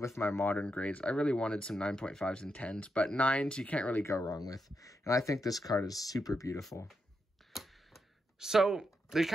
with my modern grades. I really wanted some 9.5s and 10s, but 9s you can't really go wrong with. And I think this card is super beautiful. So they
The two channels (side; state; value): both; normal; correlation 0.84